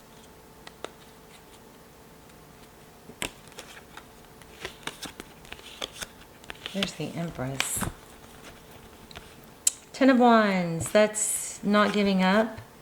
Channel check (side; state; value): both; identical; correlation 1.00